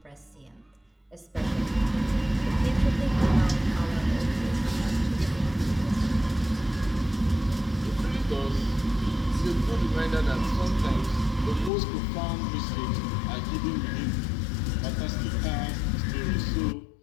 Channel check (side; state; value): right; drops out; at 11.7 s